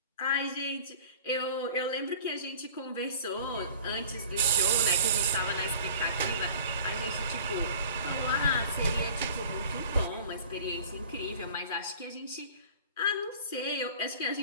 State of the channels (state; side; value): inverted; both; correlation -0.44